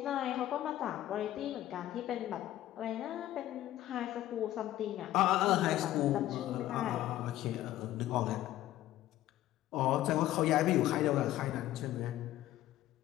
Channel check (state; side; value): quieter; right; 14.0 dB